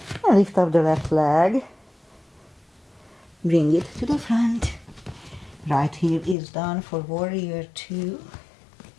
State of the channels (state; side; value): drops out; right; at 6.4 s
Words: And lift up the left leg. Bring it to the front. Right heel is down for warrior 2.